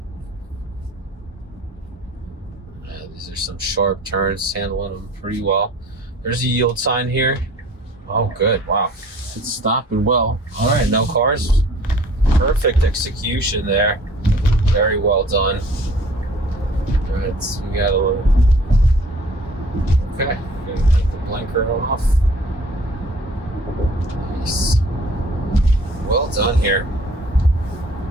These are some sharp turns, handling them pretty well. There's a yield sign here. Oh, good. Wow. It's stopping well. All right, no cars. Perfect execution there. Very well done. All right, so we got a little. Okay, gonna take the blinker off. Nice. Well done here.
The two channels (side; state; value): both; normal; correlation 0.51